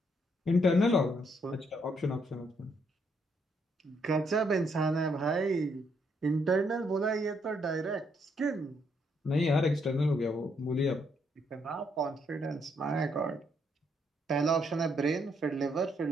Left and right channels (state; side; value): normal; both; correlation 0.73